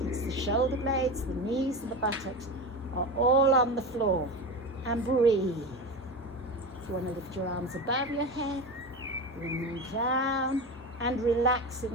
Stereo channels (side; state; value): both; normal; correlation 0.24